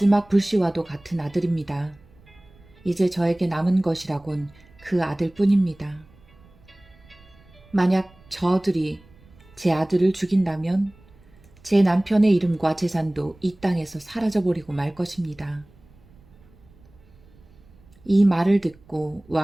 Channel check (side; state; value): right; noise; rumble, 27 dB below the sound